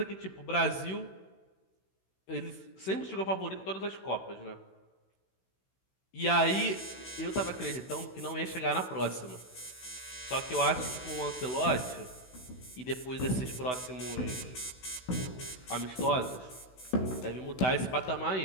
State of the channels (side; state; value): right; late; 16 ms